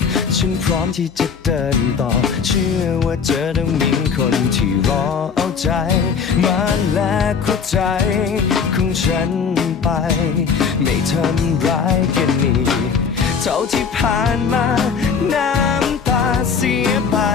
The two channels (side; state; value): right; quieter; 6.1 dB